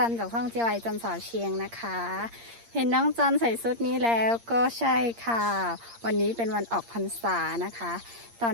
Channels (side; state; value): left; late; 8.6 ms